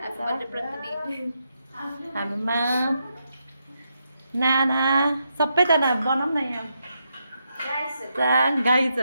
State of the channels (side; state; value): both; inverted; correlation -0.82